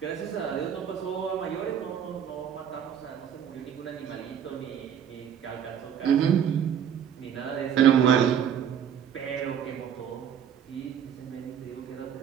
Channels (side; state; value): left; quieter; 8.6 dB